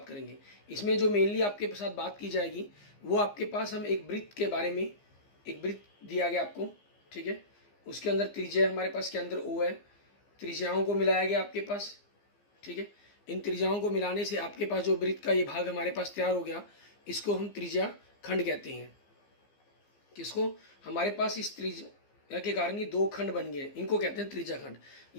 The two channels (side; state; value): right; late; 15 ms